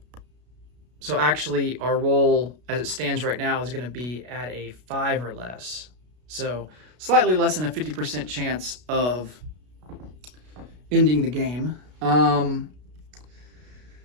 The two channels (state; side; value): late; left; 33 ms